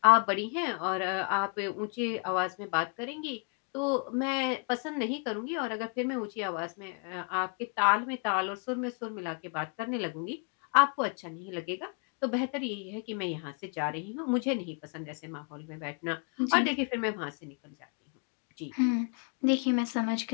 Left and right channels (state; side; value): quieter; right; 39.5 dB